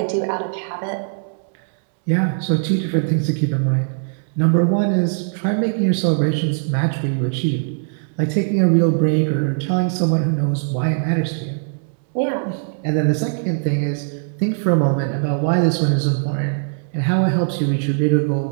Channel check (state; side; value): silent; left; digital silence